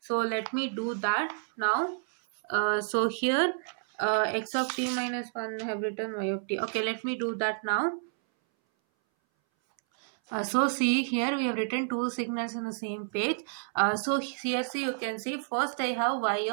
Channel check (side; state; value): left; silent; 58 dB below the other